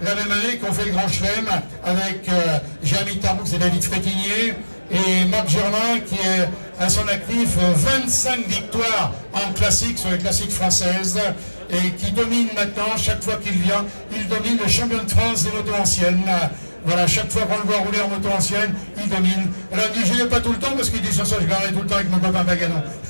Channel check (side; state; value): both; inverted; correlation -1.00